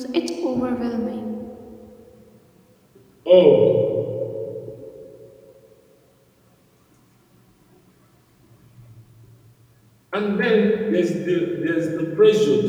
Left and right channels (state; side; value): identical; both; correlation 1.00